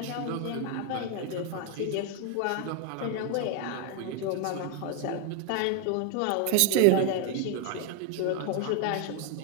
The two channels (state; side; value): different; both; correlation 0.00